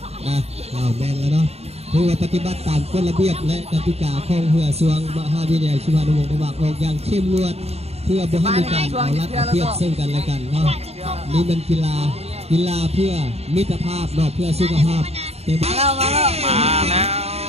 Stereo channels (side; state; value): left; late; 0.30 ms